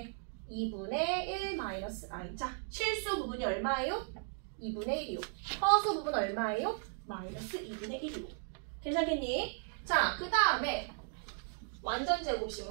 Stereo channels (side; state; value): left; silent; 54 dB below the other